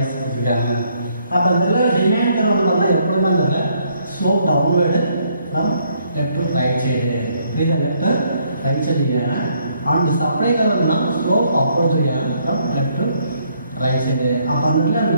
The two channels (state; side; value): inverted; both; correlation -0.70